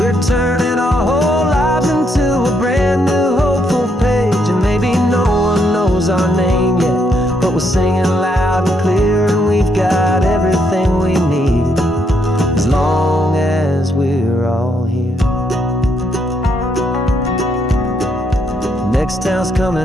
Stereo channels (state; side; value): normal; both; correlation 0.75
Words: turning our whole lives into a brand new hopeful page. And maybe no one knows our name yet, but we're singing loud and clear, and we've got everything we need, as long as we're all here. Next town's